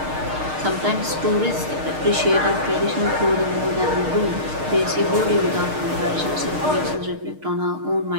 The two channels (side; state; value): left; late; 6.5 ms